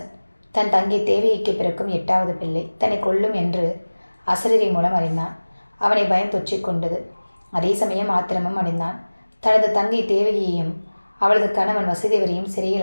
தன் தங்கை தேவகிக்கு பிறக்கும் 8வது பிள்ளை தன்னை கொல்லும் என்று அசரீரி மூலம் அறிந்தான். அவனை பயம் தொற்றிக் கொண்டது. அதே சமயம் ஆத்திரமும் அடைந்தான். தனது தங்கை தேவகியையும் அவளது கணவன் வசுதேவரையும்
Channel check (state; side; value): inverted; both; correlation -1.00